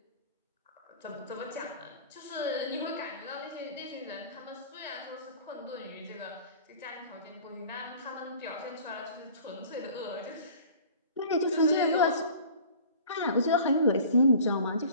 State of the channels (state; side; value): inverted; both; correlation -0.45